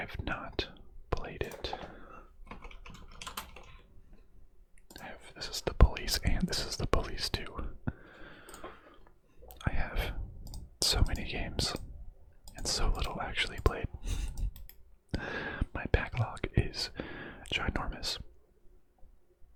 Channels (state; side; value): identical; both; correlation 1.00